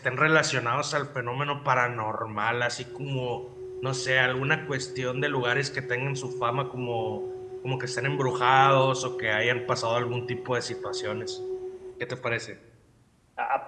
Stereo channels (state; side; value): identical; both; correlation 1.00